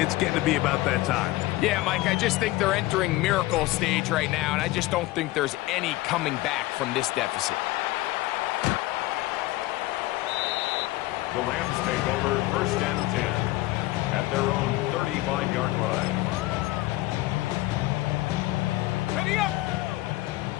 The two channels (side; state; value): right; quieter; 18.2 dB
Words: getting to be about that time. Yeah, Mike, I just think they're entering miracle stage right now, and I just don't think there's any coming back from this deficit. The Rams take over 1st and 10 at their own 35-yard line. Ready up.